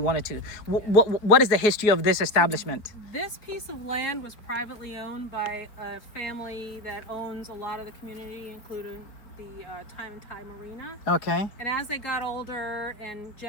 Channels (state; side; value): late; right; 4.5 ms